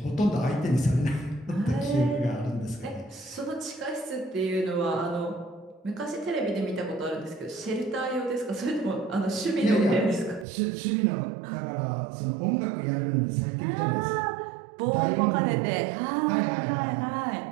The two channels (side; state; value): left; drops out; at 10.5 s